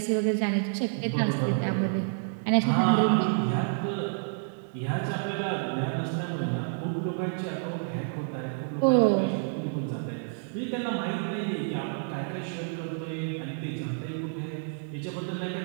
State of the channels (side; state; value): left; silent; digital silence